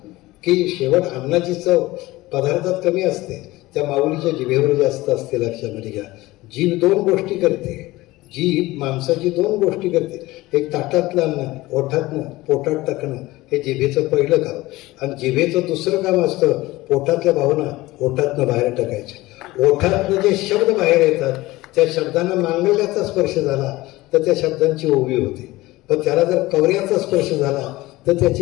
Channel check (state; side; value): quieter; right; 19.0 dB